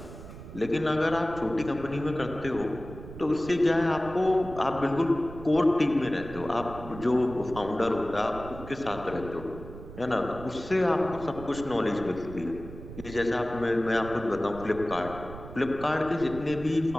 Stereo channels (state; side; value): noise; right; rumble, 13 dB below the sound